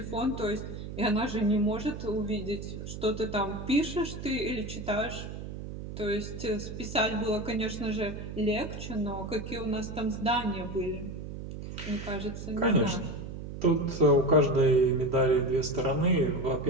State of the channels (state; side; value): noise; right; hum, 9 dB below the sound